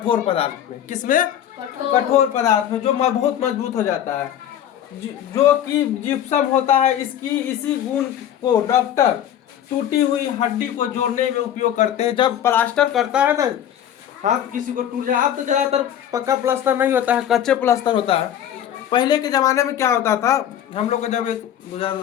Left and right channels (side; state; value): right; quieter; 10.5 dB